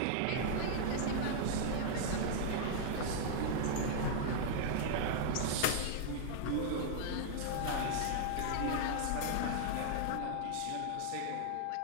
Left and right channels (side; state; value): both; different; correlation -0.01